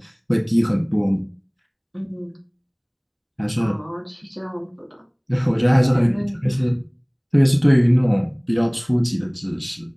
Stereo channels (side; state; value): both; identical; correlation 1.00